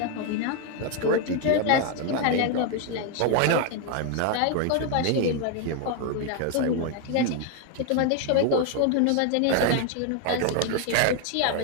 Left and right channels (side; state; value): both; different; correlation 0.01